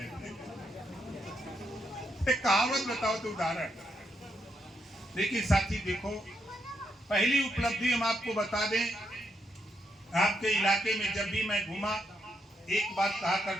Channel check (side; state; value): both; normal; correlation 0.79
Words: कहावत बताओ तो उदाहरण। लेकिन साथी देखो, पहली उपलब्धि हम आपको बता दें, आपके इलाके में जब भी मैं घूमा, एक बात कहा